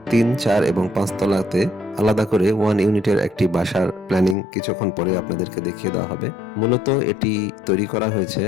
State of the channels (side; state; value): right; drops out; at 4.4 s